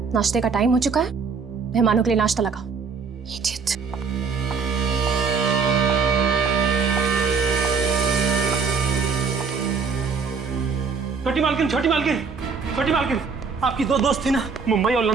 नाश्ते का टाइम हो चुका है, मेहमानों के लिए नाश्ता लगाओ। Idiot। छोटी मालकिन, छोटी मालकिन, छोटी मालकिन, आपकी दो दोस्त थी ना, मुंबई और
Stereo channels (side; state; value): left; quieter; 5.4 dB